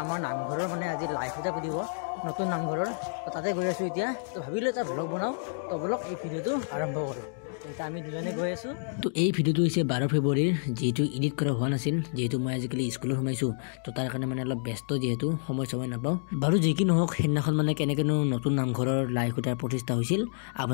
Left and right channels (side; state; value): right; silent; digital silence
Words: আমাৰ নামঘৰৰ মানে আজি লাইভ এটা দিব নতুন নামঘৰৰ তো তাতে গৈ আছো এতিয়া তো ভাবিলো এটা ব্লগ বনাও তো ব্লগ এই ভিডিওটো আৰম্ভ কৰো এটা আমি দুজনে গৈ আছো তো এই ভিডিওটো হৈছে 12 ফেব্ৰুৱাৰীৰ যেটো এডিট কৰা হোৱা নাছিল যেটো মই আজিকালি স্কুলত সোমাইছো তো তাৰ কাৰণে মানে অলপ ব্যস্ত যেটো সময় নাপাও বাৰু যে কি নহওক হেনাখন মানে কেনেকেনো নতুন নামঘৰৰ লাইভ এটা প্ৰতিষ্ঠা হৈছিল